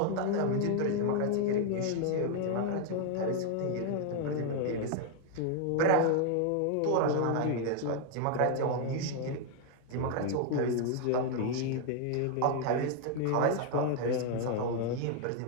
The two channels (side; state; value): both; different; correlation 0.00